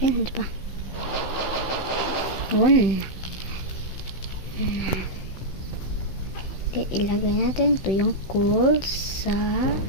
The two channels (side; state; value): right; late; 16 ms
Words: Yan, diba? Yun. Ilagay natin ito yung coal sa